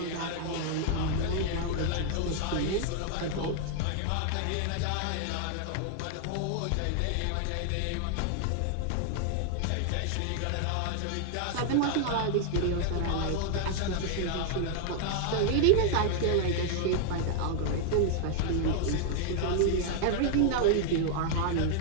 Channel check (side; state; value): both; different; correlation 0.00